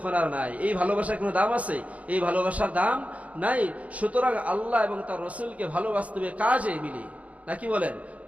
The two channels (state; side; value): late; left; 0.068 ms